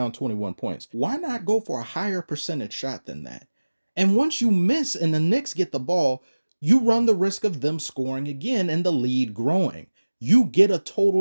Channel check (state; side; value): inverted; both; correlation -1.00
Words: 21 points. Why not go for a higher percentage shot than that? And once you miss and the Knicks get the ball, you run the risk of them scoring again and the lead growing. You get a